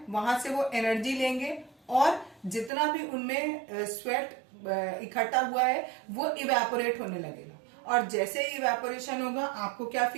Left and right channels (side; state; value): left; drops out; at 2.7 s